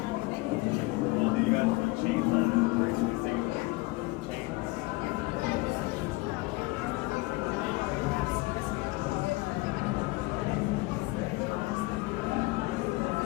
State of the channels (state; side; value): quieter; right; 22.9 dB